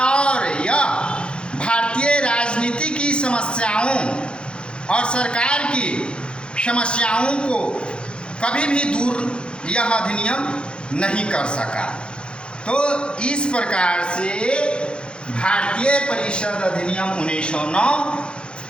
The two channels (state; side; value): late; right; 0.054 ms